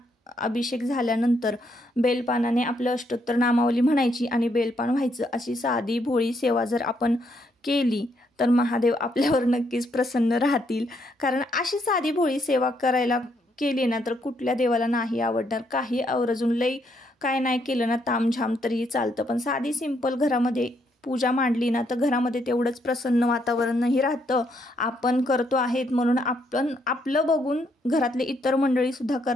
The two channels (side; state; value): both; normal; correlation 0.74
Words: अभिषेक झाल्यानंतर बेलपानाने आपलं अष्टोत्तर नामावली म्हणायची आणि बेलपान व्हायचं। अशी साधी भोळी सेवा जर आपण केली तर महादेव आपल्यावर नक्कीच प्रसन्न राहतील। कारण अशी साधी भोळी सेवा करायला केली ना तर कुठल्या देवाला नाही आवडणार। काही आवर्जून लई काय नाही केलं ना तामझाम तरीही चालतं, पण साधी सिंपल घरामध्ये पूजा मांडली ना तर घरामध्ये तेवढंच प्रसन्न वातावरणही राहतं। आपण करतो आहेत म्हणून आपण आपलं बघून घरातले इतर मंडळी सुद्धा